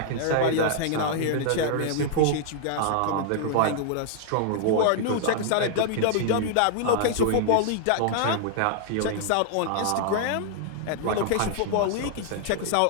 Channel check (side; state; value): both; different; correlation -0.01